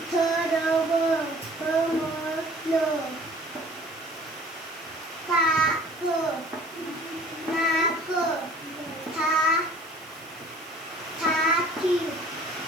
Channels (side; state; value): right; noise; hiss, 23 dB below the sound